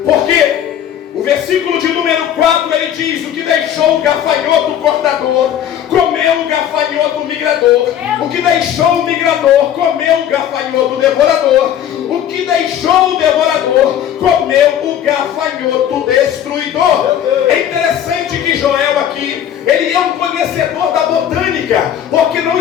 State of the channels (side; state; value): right; quieter; 10.1 dB